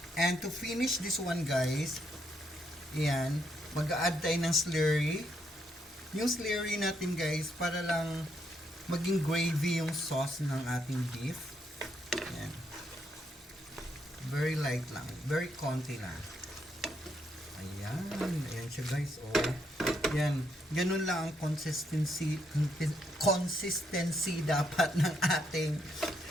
And to finish this one, guys, yan, mag-a-add tayo ng slurry. Yung slurry natin, guys, para lang maging gravy yung sauce ng ating beef. Yan. Very light lang. Very konti lang. Ayan. Ayan siya, guys. Oh. Yan. Ganun lang ang consistency dapat ng ating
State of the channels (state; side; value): normal; both; correlation 0.76